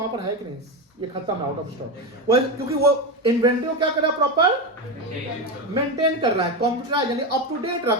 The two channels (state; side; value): normal; both; correlation 0.15